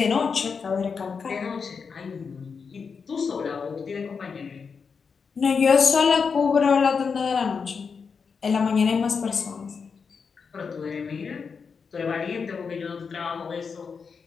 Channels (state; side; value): quieter; right; 5.6 dB